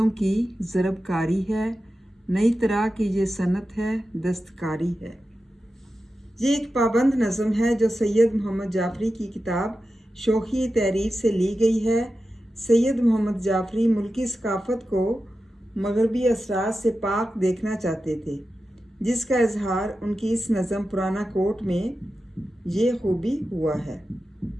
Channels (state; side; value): normal; both; correlation 0.92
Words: की ज़रबकारी है, नई तरह की ये सनत है, दस्तकारी है। ये एक पाबंद नज़म है जो सैयद मोहम्मद जाफरी की किताब शोखी तहरीर से ली गई है। सैयद मोहम्मद जाफरी मुल्की सकाफ़त को मगरबी असरात से पाक देखना चाहते थे, जिसका इजहार उनकी इस नज़म पुराना कोट में ये खूबी हुआ है।